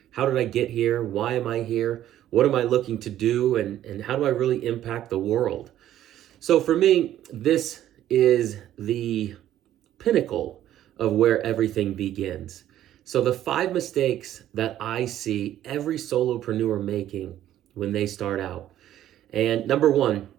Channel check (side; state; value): left; quieter; 12.3 dB